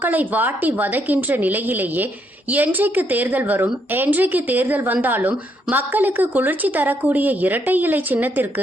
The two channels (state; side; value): normal; both; correlation 0.74